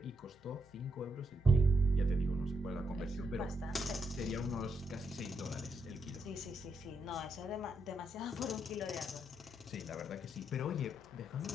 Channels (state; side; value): normal; both; correlation 0.79